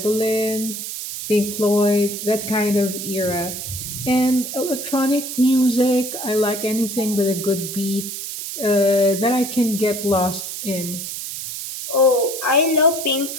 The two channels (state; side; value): noise; right; hiss, 7 dB below the sound